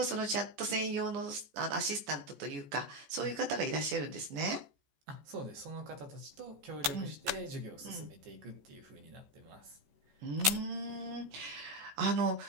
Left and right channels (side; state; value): left; late; 14 ms